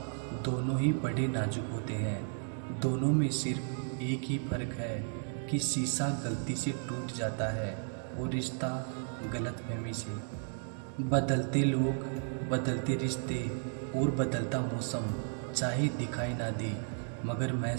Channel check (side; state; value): left; silent; 55 dB below the other